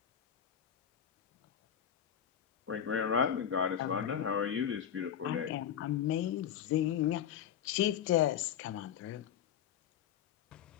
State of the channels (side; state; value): right; quieter; 9.2 dB